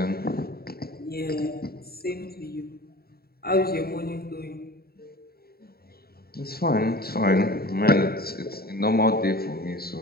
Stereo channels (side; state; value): right; late; 0.45 ms